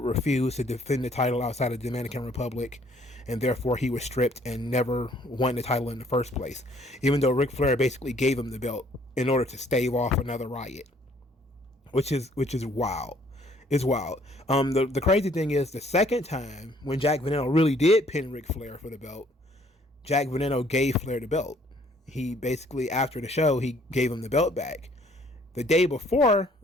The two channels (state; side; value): normal; both; correlation 0.62